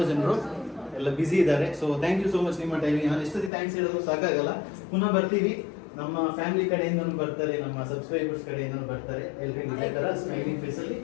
ಜನರು, ಎಲ್ಲ ಬ್ಯುಸಿ ಇದ್ದಾರೆ. So thank you so much ನಿಮ್ಮ ಟೈಮಿಗೆ. ನಾನು ಎಷ್ಟೊತ್ತಿ ಥ್ಯಾಂಕ್ಸ್ ಹೇಳಿದ್ರು ಸಾಕಾಗಲ್ಲ. ಪುನಃ ಬರ್ತೀವಿ. ನಮ್ಮ ಫ್ಯಾಮಿಲಿ ಕಡೆಯಿಂದನೂ ಬರ್ತಾರೆ, ನಮ್ಮ ಸಬ್ಸ್ಕ್ರೈಬರ್ಸ್ ಕಡೆಯಿಂದನೂ ಬರ್ತಾರೆ. ಎಲ್ರಿಗೂ ಇದೇ ಥರ ಸ್ಮೈಲಿಂಗ್ ಫೇಸಲ್ಲಿ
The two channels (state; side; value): drops out; right; at 3.5 s